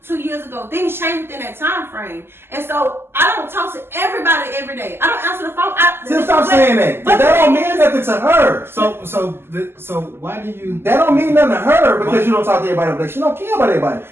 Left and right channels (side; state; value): left; late; 0.12 ms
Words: 2 years ago. Things change within that time frame, and so I don't talk to everybody every day. I don't answer the phone. Just stop saying that. But that don't mean nothing to her. So why do you? That don't mean nothing to her because you don't talk to everybody every day. She don't care about everybody.